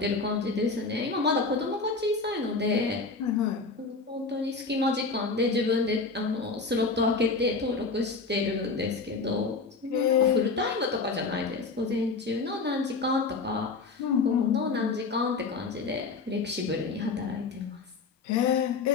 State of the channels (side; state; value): right; quieter; 4.2 dB